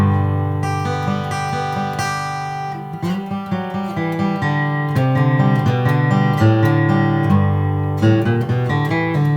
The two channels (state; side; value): identical; both; correlation 1.00